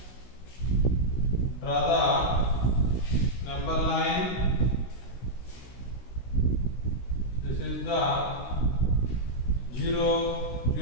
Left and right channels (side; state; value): right; late; 16 ms